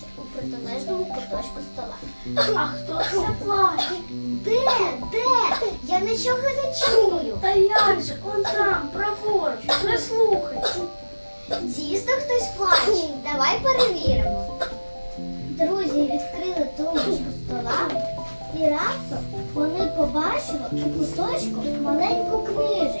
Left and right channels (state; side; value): inverted; both; correlation -1.00